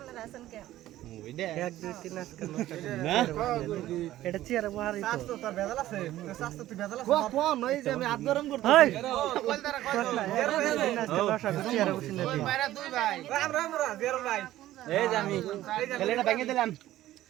আছেন কেন ওইডা 1 2 3 আজকে না এটা চেয়ারে বহারি তো স্বাস্থ্য তোর ভেজাল আছে তো স্বাস্থ্য তুই ভেজাল আছে কোন নই যে আমি হাত গরম করতেছি কলদারা চেয়ারে বসে না বাইরে দুই ভাই রাম জেরো ভাই এই যে আমি খেলেটা ভেঙে দিলাম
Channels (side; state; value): left; quieter; 14.4 dB